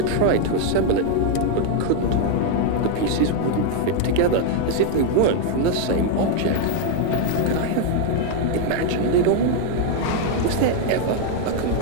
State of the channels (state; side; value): different; both; correlation 0.00